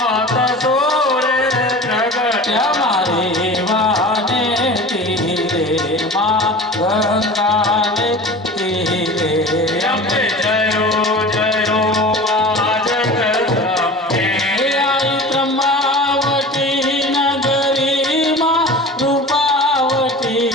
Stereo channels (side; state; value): both; normal; correlation 0.36